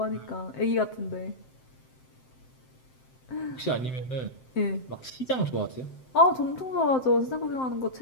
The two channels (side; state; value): right; late; 7.7 ms